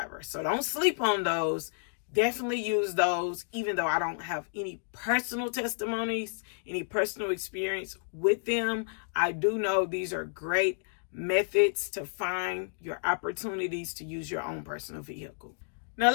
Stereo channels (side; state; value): right; silent; digital silence